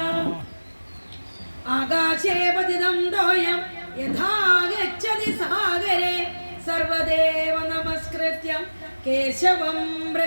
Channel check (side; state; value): both; inverted; correlation -1.00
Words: ആകാശേ പതിതം തോയം യഥാ ഗച്ഛതി സാഗരേ സർവദേവ നമസ്കൃത്യം കേശവം